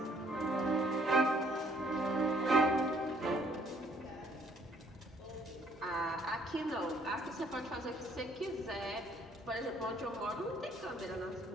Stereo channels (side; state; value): both; normal; correlation 0.63